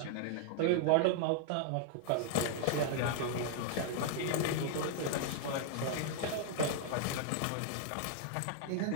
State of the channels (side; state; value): both; different; correlation 0.00